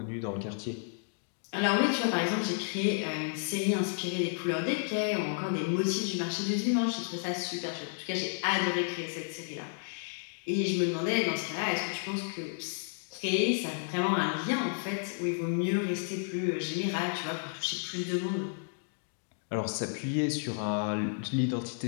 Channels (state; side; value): silent; right; digital silence